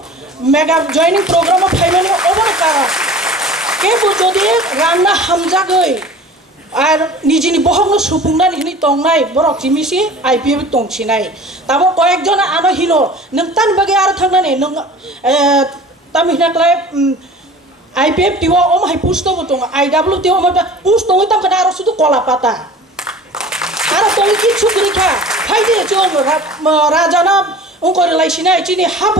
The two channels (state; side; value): normal; both; correlation 0.42